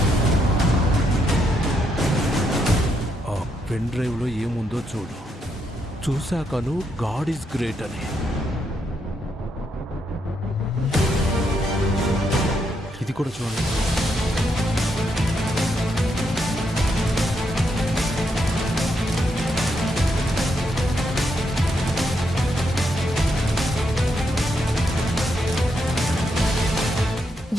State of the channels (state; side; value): normal; both; correlation 0.79